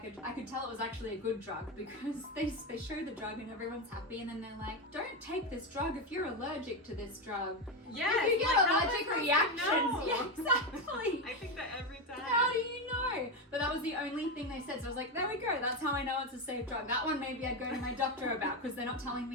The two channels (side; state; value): both; normal; correlation 0.12